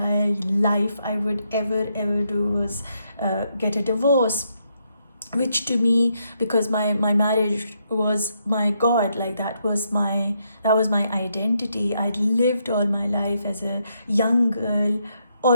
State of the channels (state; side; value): inverted; both; correlation -0.77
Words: life I would ever do was get a divorce, which to me, because my marriage was my god, like that was my identity. I'd lived all my life as a young girl,